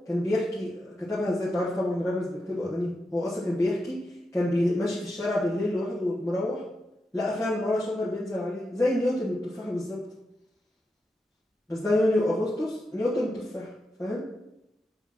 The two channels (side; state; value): both; normal; correlation 0.87